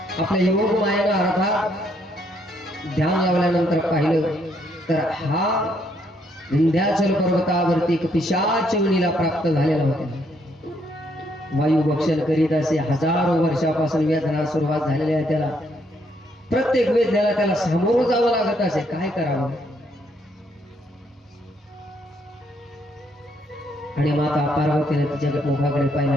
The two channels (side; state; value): both; normal; correlation 0.72